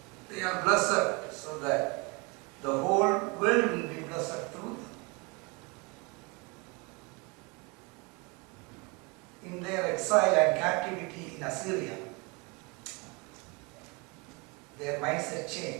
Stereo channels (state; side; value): quieter; left; 28.4 dB